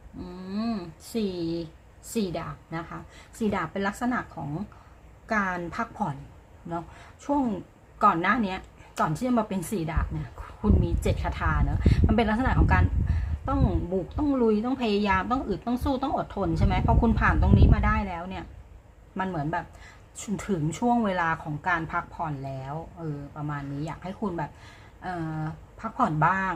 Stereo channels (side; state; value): both; identical; correlation 1.00